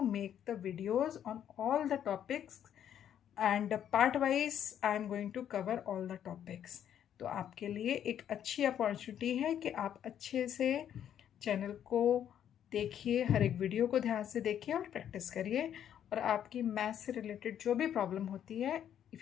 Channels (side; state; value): right; quieter; 9.8 dB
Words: make the videos on all the topics and part wise I am going to cover all the topics. तो आपके लिए एक अच्छी अपॉर्चुनिटी है कि आप अच्छे से चैनल को देखिए, हर एक वीडियो को ध्यान से देखिए और प्रैक्टिस करिए, और आपकी मैथ्स से रिलेटेड जो भी प्रॉब्लम होती है,